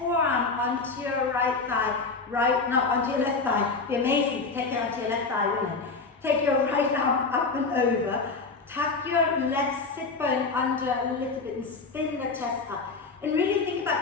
onto your right thigh. Onto your left thigh. It'd be amazing to take it onto your left thigh, wouldn't it? Take your right arm up and over. Tuck your left sit bone under a little bit and spin the chest up. And really think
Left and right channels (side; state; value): right; quieter; 4.2 dB